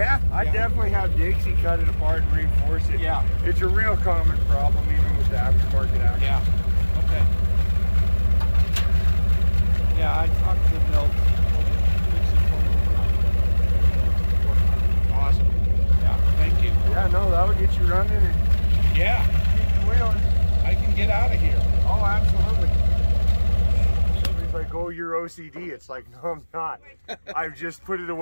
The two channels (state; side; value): inverted; both; correlation -1.00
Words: I definitely have Dixie cut it apart and reinforce it. Yeah. It's a real common problem even with the aftermarket action. Yeah. Okay. Yeah, I talked to Milt. Awesome. Yeah. Thank you. Yeah, no, that would get you running and Yeah, keep the wheels. I can get out of here. Oh, absolutely. Somebody's like, oh, you're OCD. It's like, no, I'm not. I've just put it